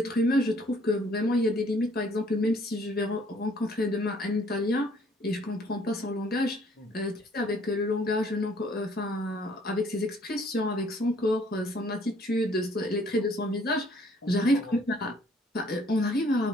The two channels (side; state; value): both; normal; correlation 0.61